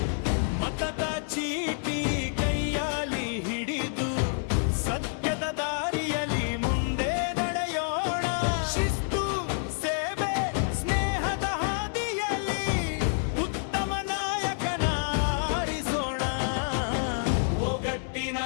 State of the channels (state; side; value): silent; right; digital silence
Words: ಮತದ ಚೀಟಿ ಕೈಯಲ್ಲಿ ಹಿಡಿದು ಸತ್ಯದ ದಾರಿಯಲ್ಲಿ ಮುಂದೆ ನಡೆಯೋಣ. ಶಿಸ್ತು, ಸೇವೆ, ಸ್ನೇಹದ ಹಾದಿಯಲ್ಲಿ ಉತ್ತಮ ನಾಯಕನ ಆರಿಸೋಣ. ಒಗ್ಗಟ್ಟಿನ